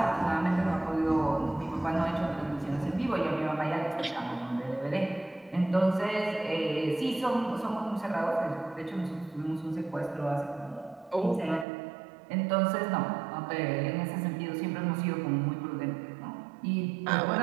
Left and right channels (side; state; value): left; drops out; at 11.7 s